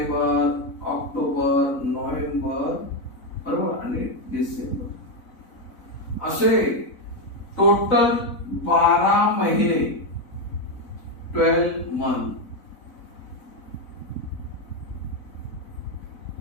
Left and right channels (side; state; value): right; late; 4.0 ms